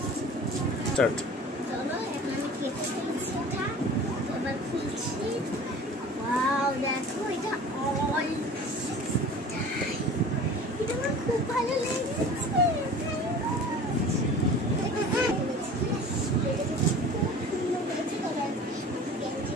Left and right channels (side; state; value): both; normal; correlation 0.41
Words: স্টার্ট। চলো এখন আমি কেটে ফেলছি এটা। এবার খুলছি। ওয়াও দেখো এটা অল এটা আমার খুব ভালো লেগেছে।